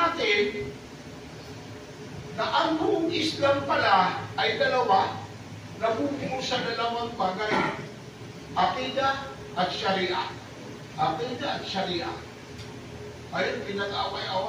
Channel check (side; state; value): both; identical; correlation 1.00